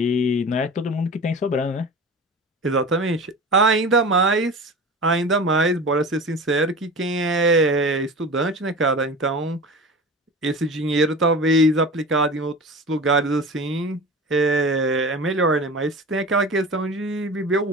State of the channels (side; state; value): both; normal; correlation 0.34